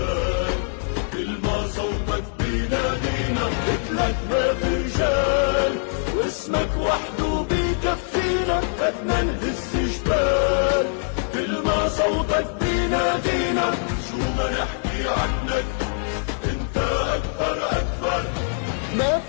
كل ما صوتك بينادينا. قلتلك ما في رجال واسمك وحده بيكفينا، بدنا نهز جبال، كل ما صوتك بينادينا، شو ما نحكي عنك انت اكبر اكبر. ما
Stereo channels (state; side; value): silent; right; 63 dB below the other